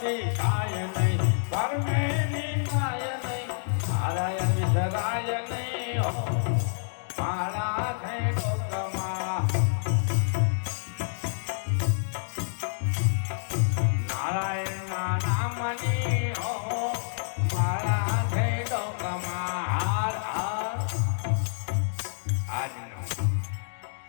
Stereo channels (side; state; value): right; silent; digital silence